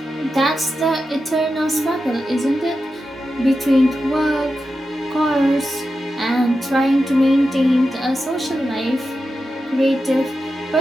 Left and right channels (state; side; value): normal; both; correlation 0.90